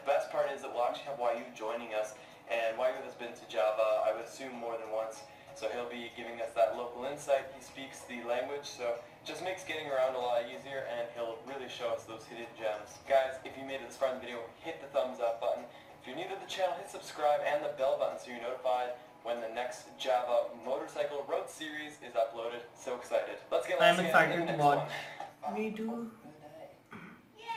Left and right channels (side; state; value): both; identical; correlation 1.00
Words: The best part is that we'll actually have YU joining us, and YU has been to Java, I would assume, more than once. So he'll be giving us that local insight. He speaks the language, so it just makes getting around a lot easier, and he'll really show us those hidden gems. Guys, if you made it this far in the video, hit the thumbs up button. If you're new to the channel, hit subscribe and the bell button so you're notified when the next Java motorcycle road series is uploaded. So excited. Let's get I'm lost excited in the to next watch. one. Me too.